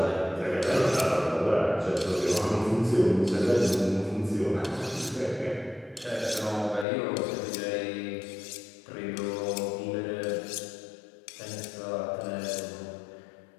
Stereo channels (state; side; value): drops out; right; at 6.9 s